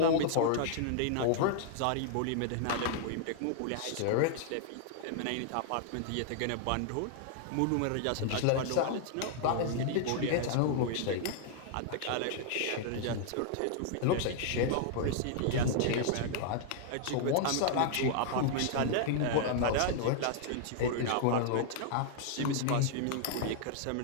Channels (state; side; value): different; both; correlation -0.01